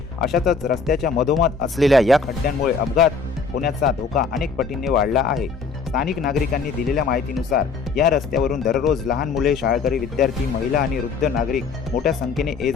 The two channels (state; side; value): quieter; right; 5.0 dB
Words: अशातच रस्त्याच्या मधोमध असलेल्या या खड्ड्यांमुळे अपघात होण्याचा धोका अनेक पटींनी वाढला आहे। स्थानिक नागरिकांनी दिलेल्या माहितीनुसार या रस्त्यावरून दररोज लहान मुले, शाळकरी विद्यार्थी, महिला आणि वृद्ध नागरिक मोठ्या संख्येने